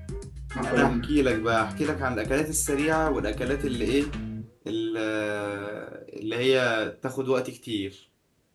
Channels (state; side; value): identical; both; correlation 1.00